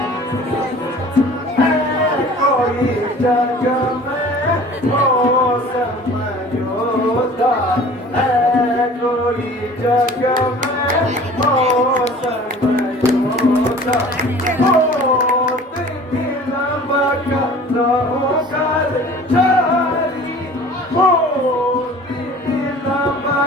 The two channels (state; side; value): normal; both; correlation 0.45